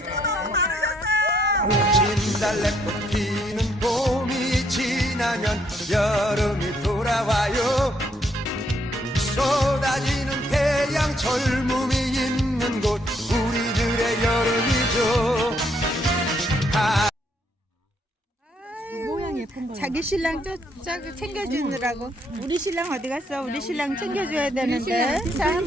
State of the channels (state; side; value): normal; both; correlation 0.71